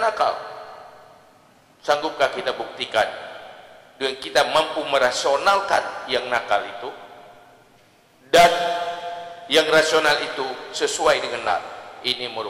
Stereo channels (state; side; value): identical; both; correlation 1.00